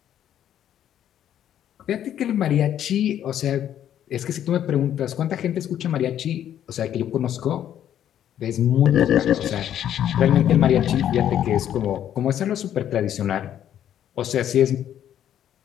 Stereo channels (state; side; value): quieter; right; 10.6 dB